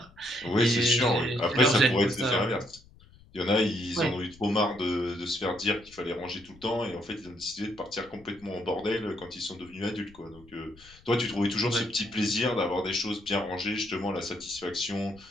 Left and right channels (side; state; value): left; noise; rumble, 24 dB below the sound